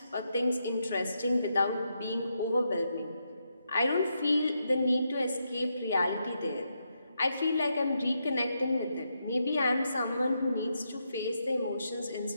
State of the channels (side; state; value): both; inverted; correlation -0.82